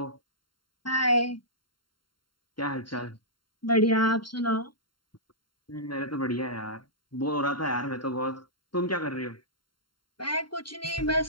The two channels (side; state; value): right; late; 0.72 ms